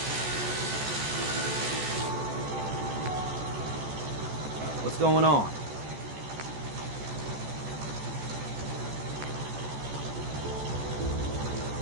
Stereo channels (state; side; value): late; left; 14 ms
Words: What's going on?